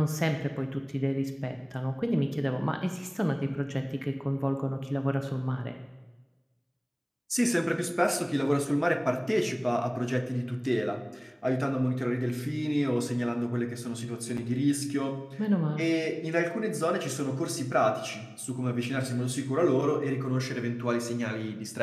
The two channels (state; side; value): identical; both; correlation 1.00